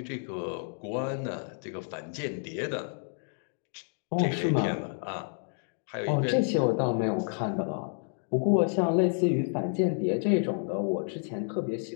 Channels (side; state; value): right; silent; 58 dB below the other